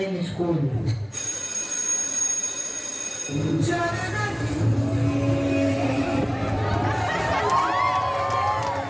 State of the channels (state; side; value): identical; both; correlation 1.00